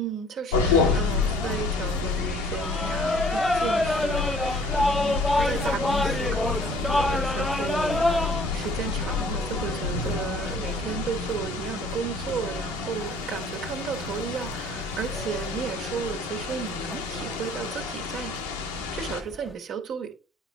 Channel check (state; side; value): normal; both; correlation 0.54